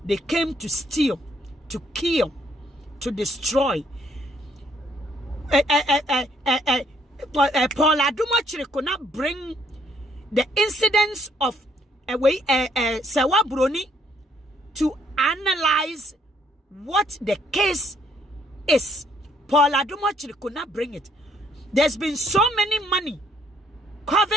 They came to steal, to kill, to destroy. Paul Adom Otchery could not bring the incidents of Sewa Broni to analyze what the case is. Paul Adom Otchery could not bring it. There's been so many money,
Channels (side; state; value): both; normal; correlation 0.68